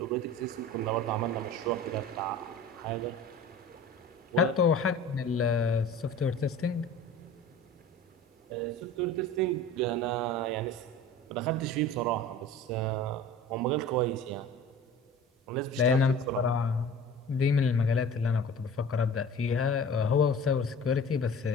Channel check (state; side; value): normal; both; correlation 0.41